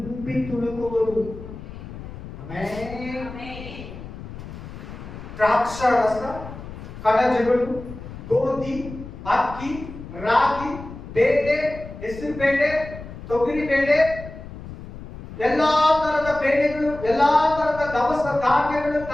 ತುಳುಕುವುದು. ದ್ರಾಕ್ಷಾರಸ, ಕಣಜಗಳು, ಗೋಧಿ, ಅಕ್ಕಿ, ರಾಗಿ, ಬೇಳೆ, ಹೆಸರು ಬೇಳೆ, ತೊಗರಿ ಬೇಳೆ, ಎಲ್ಲಾ ತರದ ಬೇಳೆಗಳು, ಎಲ್ಲಾ ತರದ ದವಸ ಧಾನ್ಯಗಳು,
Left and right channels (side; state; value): left; noise; rumble, 13 dB below the sound